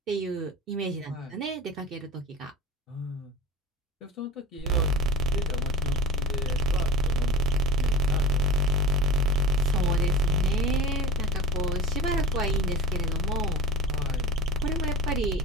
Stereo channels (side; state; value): both; normal; correlation 0.31